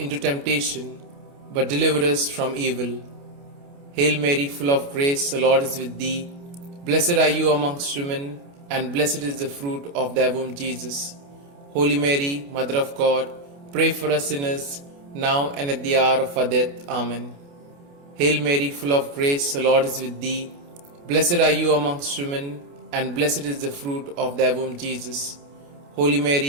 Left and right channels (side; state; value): left; late; 28 ms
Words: temptation, but deliver us from evil. Hail Mary, full of grace, the Lord is with thee. Blessed are you amongst women, and blessed is the fruit of thy womb, Jesus. Holy Mary, Mother of God, pray for us sinners, now and at the hour of our death. Amen. Hail Mary, full of grace, the Lord is with thee. Blessed are you amongst women, and blessed is the fruit of thy womb, Jesus. Holy